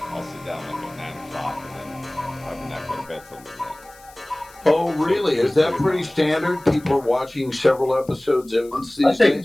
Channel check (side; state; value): left; noise; hiss, 24 dB below the sound